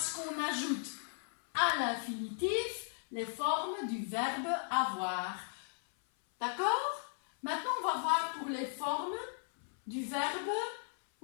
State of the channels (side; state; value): right; silent; 53 dB below the other